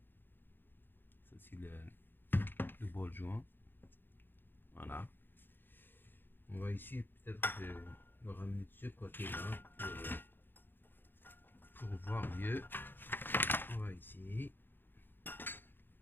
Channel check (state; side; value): late; right; 0.097 ms